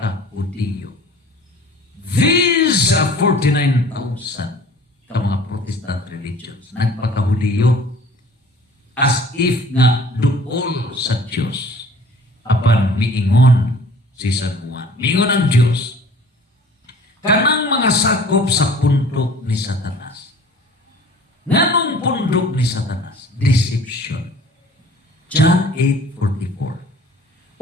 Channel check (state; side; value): normal; both; correlation 0.48